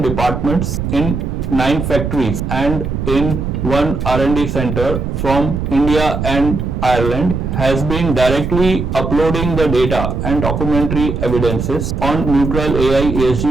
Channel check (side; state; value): right; noise; rumble, 3 dB below the sound